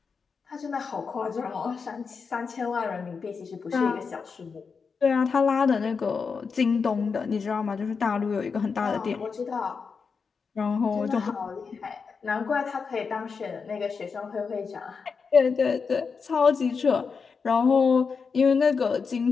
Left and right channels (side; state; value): right; quieter; 5.4 dB